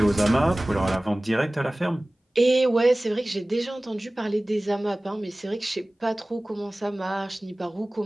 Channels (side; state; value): both; normal; correlation 0.98